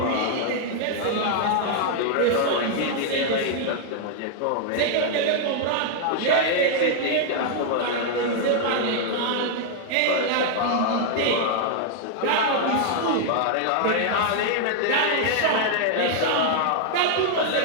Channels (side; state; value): both; different; correlation -0.01